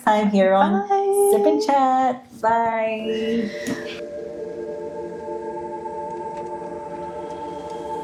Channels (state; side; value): identical; both; correlation 1.00